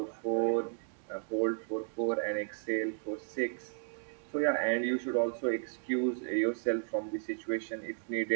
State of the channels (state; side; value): silent; left; digital silence